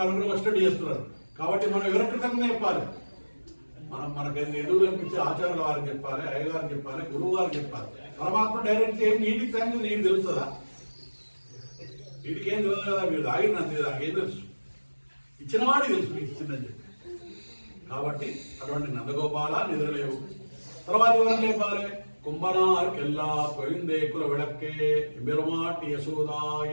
వచ్చేటట్టు చేస్తున్నారు. కాబట్టి మనం ఎవరి కృతజ్ఞత చెప్పాలి? మనకు ఎదురు కనిపించే ఆచార్యుల వారికి చెప్పాలి, అయ్యగారికి చెప్పాలి, గురువు గారికి చెప్పాలి. పరమాత్మ డైరెక్ట్ ఏం నీటికి థ్యాంక్స్ నీకు తెలుస్తుందా? వీటికి ఏం తెలియదు కదా, మీరు తాగినంతే, నాకేం తెలుసు, ఇచ్చిన వాడికి తెలుసు మీకు ఇచ్చిందని చెప్పి. కాబట్టి అటువంటి నందగోపాల నిద్రలేవు. తర్వాత ఎవరు లేపాలి? కుంభనార్కెల్లా పోయిందే కుల విడక్కే బెరుమాటి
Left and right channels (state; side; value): inverted; both; correlation -1.00